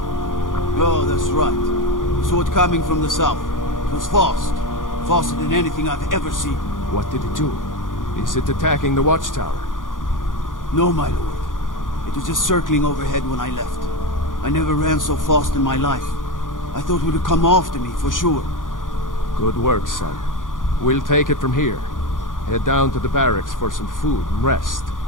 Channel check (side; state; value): right; late; 0.89 ms